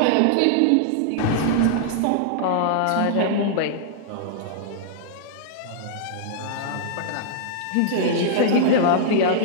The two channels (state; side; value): different; both; correlation -0.02